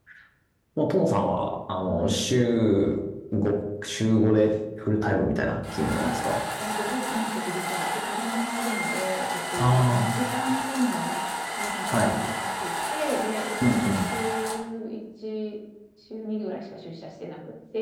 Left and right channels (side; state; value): both; identical; correlation 1.00